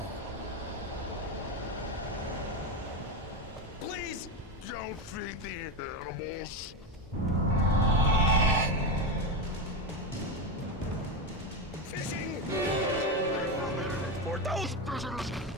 Please don't feed the animals. Fishing! For those visitors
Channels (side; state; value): both; normal; correlation 0.16